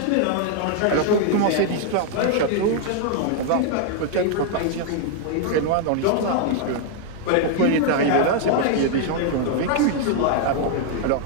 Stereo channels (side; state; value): both; different; correlation 0.00